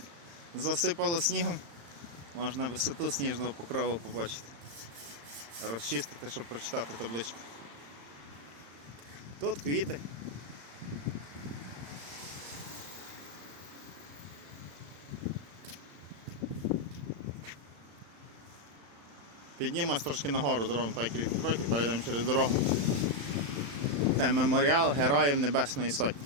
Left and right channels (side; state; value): left; late; 35 ms